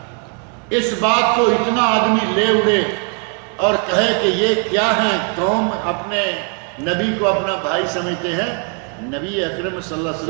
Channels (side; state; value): left; quieter; 39.9 dB